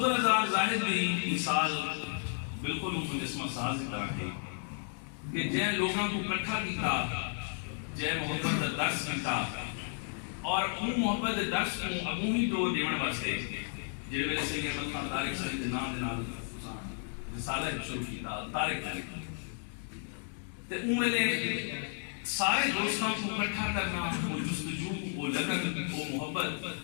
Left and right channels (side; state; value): right; silent; 56 dB below the other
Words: زاہد بھی مثال بالکل مجسمہ ساز کی طرح ہے کہ جن لوگوں کو اکٹھا کیتا جن محبت کا درس کیتا اور ان محبت کے درس کو اگوں ہی دو دیون واسطے جڑے ویلے سید احمد خان طارق صاحب دے نام دے نال رسالہ شروع کیتا طارق تے ان ویلے سارے دوستوں کو اکٹھا کرنا وہ جستجو وہ لگن وہ محبت